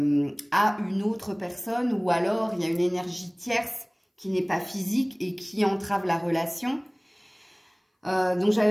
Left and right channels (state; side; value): identical; both; correlation 1.00